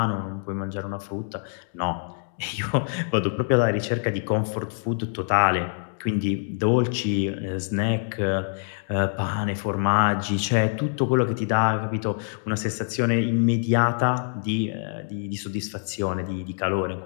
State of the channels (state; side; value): silent; right; digital silence